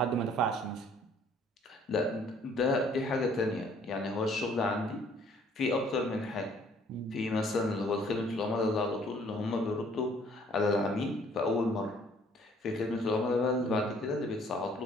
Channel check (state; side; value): normal; both; correlation 0.59